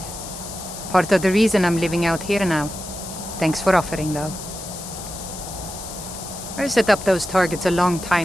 Part of the reason I'm living out here now. Thanks for offering, though. I set up those targets a long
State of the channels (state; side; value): noise; left; hiss, 11 dB below the sound